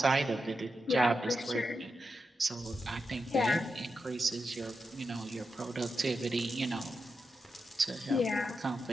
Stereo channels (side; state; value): both; normal; correlation 0.87